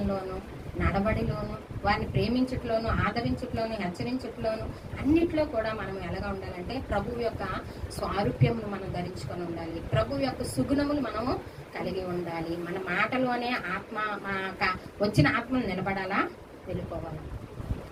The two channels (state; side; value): identical; both; correlation 1.00